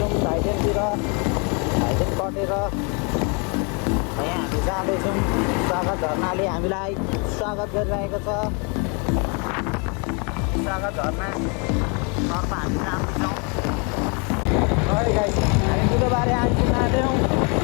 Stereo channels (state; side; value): quieter; right; 34.0 dB